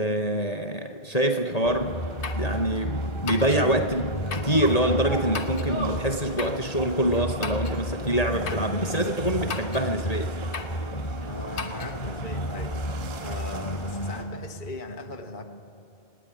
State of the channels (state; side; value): late; right; 1.8 ms